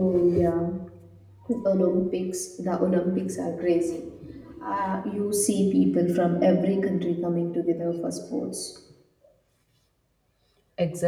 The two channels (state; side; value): identical; both; correlation 1.00